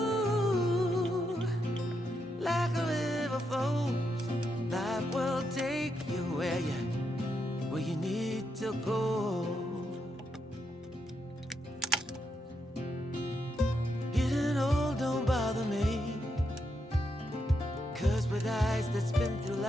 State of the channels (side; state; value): both; normal; correlation 0.82